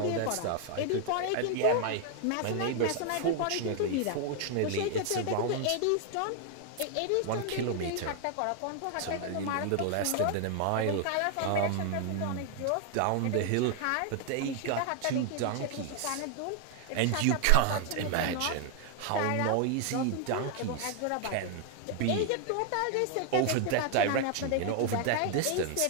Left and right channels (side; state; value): both; different; correlation 0.00